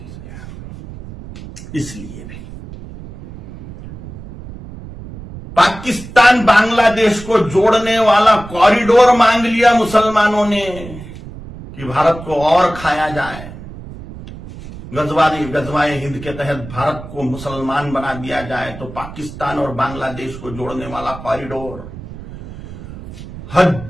इसलिए भी पाकिस्तान बांग्लादेश को जोड़ने वाला कॉरिडोर मांग लिया मुसलमानों ने कि भारत को और खाया जाए। गजवाए हिंद के तहत भारत को मुसलमान बना दिया जाए, तो पाकिस्तान और बांग्लादेश को जोड़ने वाला कॉरिडोर,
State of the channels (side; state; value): right; noise; rumble, 14 dB below the sound